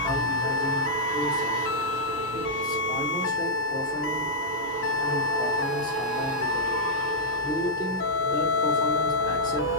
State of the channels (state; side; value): normal; both; correlation -0.08